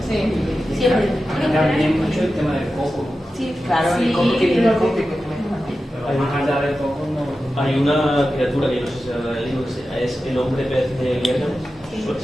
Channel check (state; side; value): normal; both; correlation 0.92